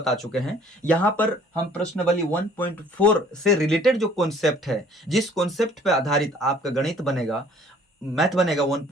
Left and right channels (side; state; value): both; normal; correlation 0.55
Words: चुके हैं। यहाँ पर हम प्रश्नावली 1.4 से रिलेटेड जो कॉन्सेप्ट है, जिस कॉन्सेप्ट पे आधारित आपका गणित बनेगा, मैथ बनेगा